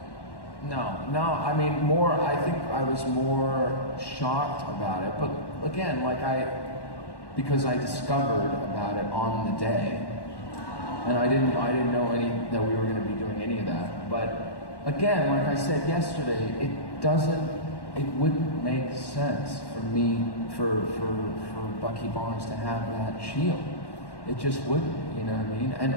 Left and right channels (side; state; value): right; late; 1.1 ms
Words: No, I mean, I think I was more shocked about it, but again, because I discovered about it on the day, and I didn't know that we were going to be doing any of that, but again, like I said yesterday, it wouldn't make sense for for Bucky Barnes to have that shield. It just wouldn't, you know what I mean? And